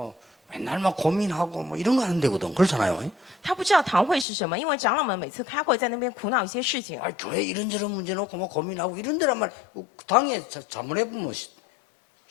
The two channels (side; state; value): right; drops out; at 4.2 s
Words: 맨날 막 고민하고 뭐 이런 거 하는 데거든. 그렇잖아요. 他不知道堂会是什么，因为长老们每次开会在那边苦恼一些事情。 아, 교회 이런저런 문제 놓고 뭐 고민하고 이런 데란 말 당해 자문해보면